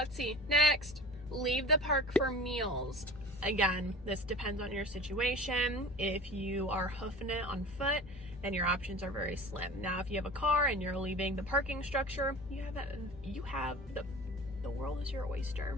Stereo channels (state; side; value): normal; both; correlation 0.38